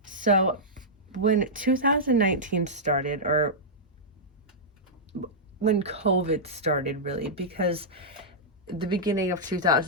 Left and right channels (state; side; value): normal; both; correlation -0.11